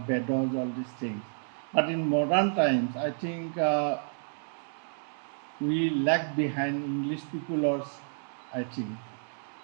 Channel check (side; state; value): left; silent; digital silence